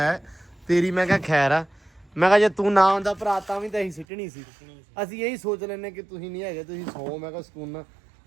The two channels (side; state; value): left; drops out; at 4.0 s